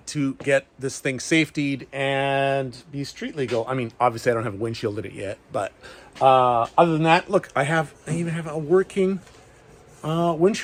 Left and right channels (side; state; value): both; identical; correlation 1.00